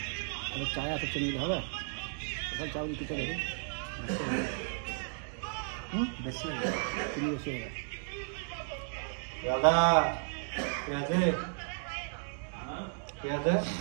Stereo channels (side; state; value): left; silent; 55 dB below the other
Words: আবার চায় এত চিনি দিলে হবে, ওখানে চাউল কিছু দেবে বেশি হবে, চিনি বেশি হবে। দাদা কে আছে? কে আছে?